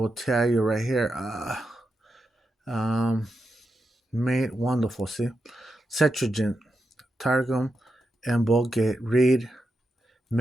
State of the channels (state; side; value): normal; both; correlation 0.87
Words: tell you right here, um, made wonderful. See, Septuagint, Targum, and Vulgate read